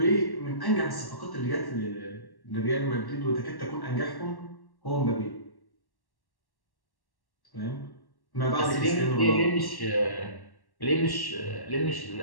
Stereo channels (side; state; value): right; late; 1.1 ms